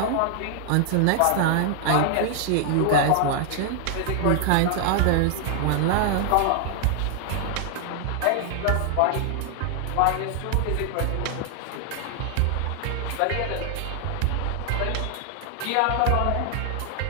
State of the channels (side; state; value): both; different; correlation 0.00